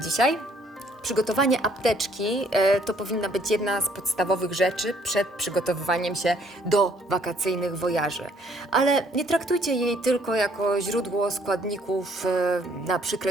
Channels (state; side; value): normal; both; correlation 0.63